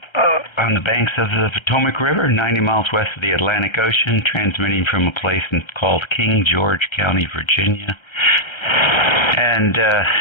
on the banks of the Potomac River, 90 miles west of the Atlantic Ocean, transmitting from a place called King George County, Virginia. And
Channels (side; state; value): right; late; 1.3 ms